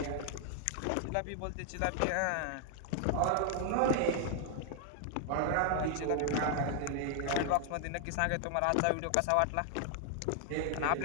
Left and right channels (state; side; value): different; both; correlation 0.00